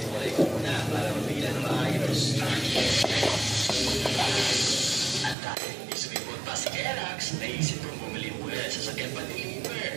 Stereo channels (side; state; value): left; drops out; at 5.4 s